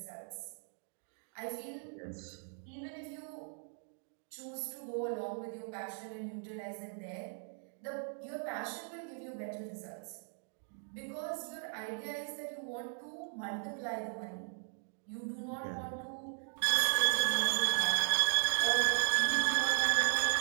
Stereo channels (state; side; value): silent; left; 53 dB below the other